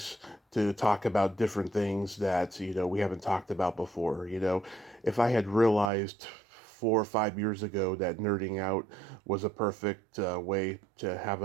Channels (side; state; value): left; drops out; at 5.9 s